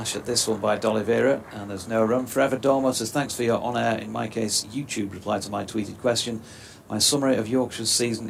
at this one by D'Oliveira, and there's no run. Forever Dormo says, thanks for your on-air, in my case, YouTube reply to my tweeted question. My summary of Yorkshire's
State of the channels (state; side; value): identical; both; correlation 1.00